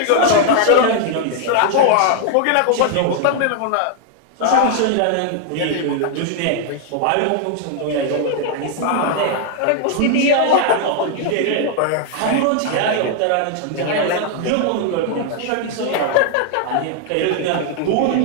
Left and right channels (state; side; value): different; both; correlation 0.00